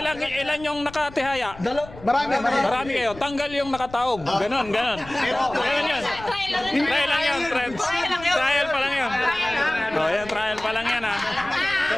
lang. Ilan yung nakatihaya? Marami kayo. Tanggal yung nakataob. Ganon. Ganon yun. Trial lang yun. Trial pa lang yun. Oh, yan, trial pa lang yan, ha.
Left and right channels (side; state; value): left; noise; rumble, 18 dB below the sound